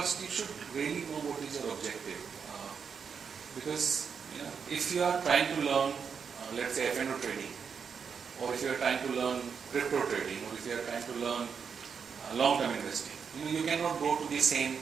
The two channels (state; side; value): quieter; left; 6.4 dB